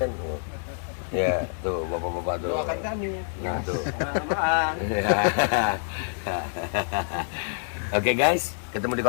Ya, tuh bapak-bapak tuh. Doakan kami ya. Nah, tuh. Maaf. Oke guys, ketemu di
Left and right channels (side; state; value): right; silent; 60 dB below the other